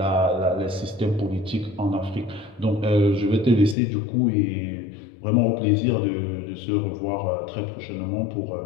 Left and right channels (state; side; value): drops out; right; at 3.8 s